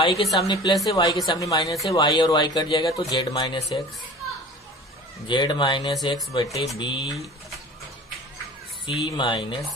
के सामने प्लस है, y के सामने माइनस है, y और y कट जाएगा तो z माइनस एक्स बटे b c माइनस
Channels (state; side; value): normal; both; correlation 0.41